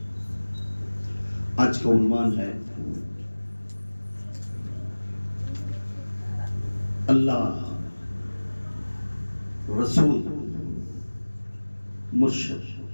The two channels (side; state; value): both; inverted; correlation -1.00